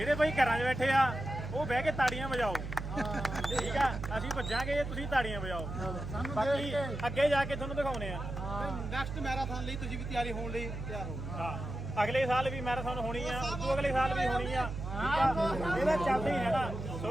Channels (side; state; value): right; noise; hum, 6 dB below the sound